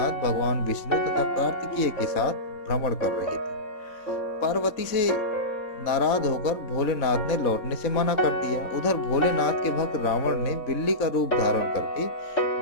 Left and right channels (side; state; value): right; late; 3.6 ms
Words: भगवान विष्णु तथा कार्तिकेय के साथ भ्रमण कर रहे थे। पार्वती से नाराज होकर भोलेनाथ ने लौटने से मना कर दिया। उधर भोलेनाथ के भक्त रावण ने बिल्ली का रूप धारण करके